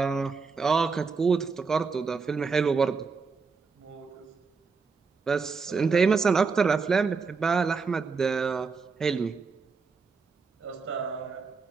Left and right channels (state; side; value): quieter; left; 4.9 dB